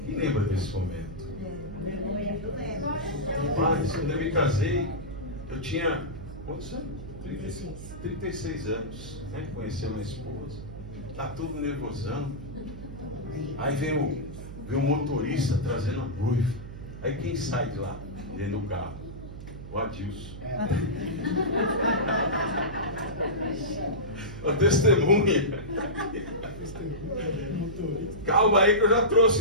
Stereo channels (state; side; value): noise; right; hum, 11 dB below the sound